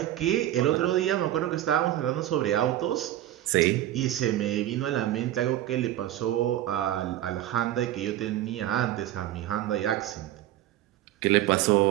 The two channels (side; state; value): left; quieter; 13.3 dB